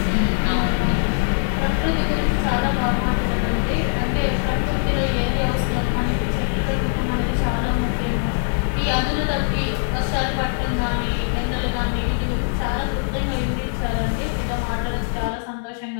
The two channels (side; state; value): right; silent; digital silence